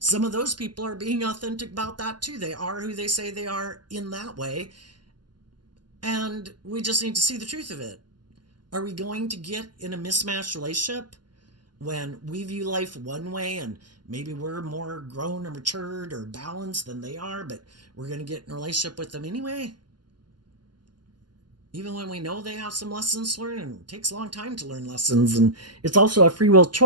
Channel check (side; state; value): left; late; 0.71 ms